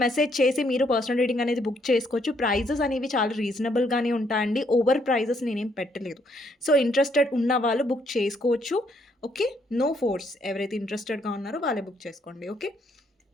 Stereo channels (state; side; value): normal; both; correlation 0.71